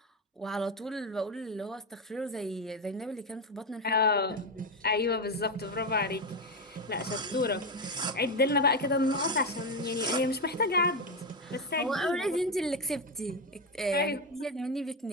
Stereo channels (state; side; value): normal; both; correlation 0.11